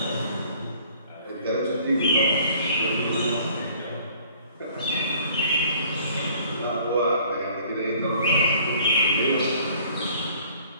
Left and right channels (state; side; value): inverted; both; correlation -0.55